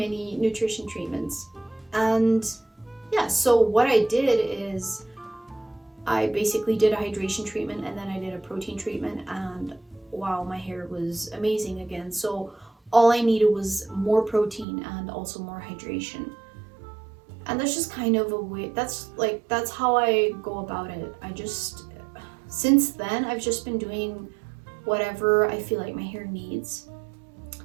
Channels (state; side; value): drops out; left; at 14.7 s